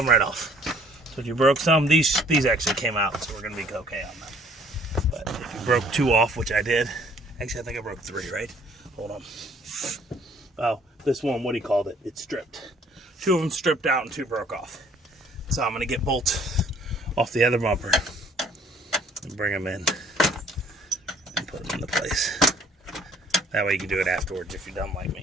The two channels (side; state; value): both; normal; correlation 0.59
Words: right off. So if you broke some, these actually came out, so we're gonna be okay on them. But if you broke 2 off, which I did, actually I think I broke 3, right? Hold on. Oh, this one, what he called it, it's stripped. 2 of them stripped out and 2 broke off. So I'm gonna get bolts off the other bumper and bring them in and put them into place. That way you can do it afterwards if you're dumb like